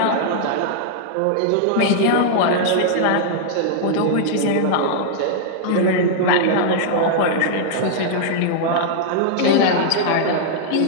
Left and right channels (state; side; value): different; both; correlation -0.01